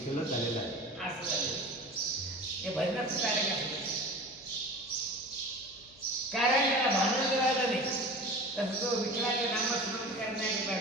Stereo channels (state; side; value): noise; left; hum, 27 dB below the sound